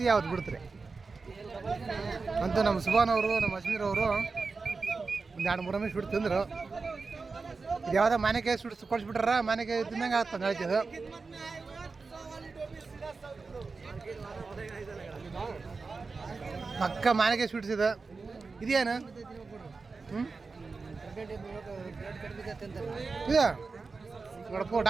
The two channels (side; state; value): left; quieter; 4.3 dB